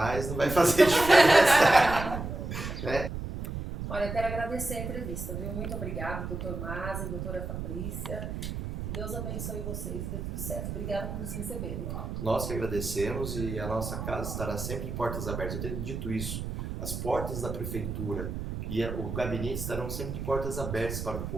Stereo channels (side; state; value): right; noise; rumble, 5 dB below the sound